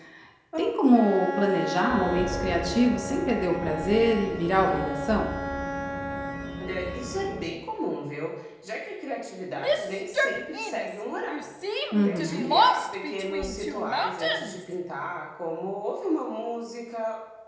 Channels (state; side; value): identical; both; correlation 1.00